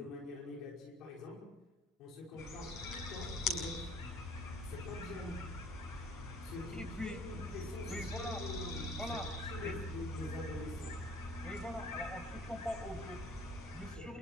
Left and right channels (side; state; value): both; normal; correlation 0.54